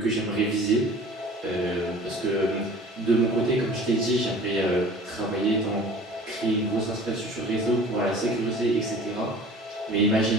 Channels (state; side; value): normal; both; correlation 0.44